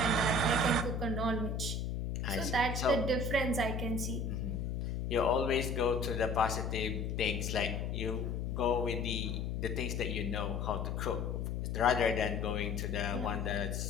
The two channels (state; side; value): noise; left; hum, 2 dB below the sound